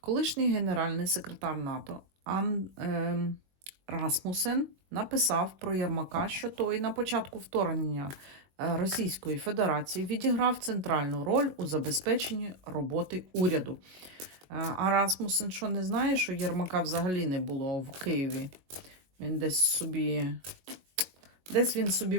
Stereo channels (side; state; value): left; late; 22 ms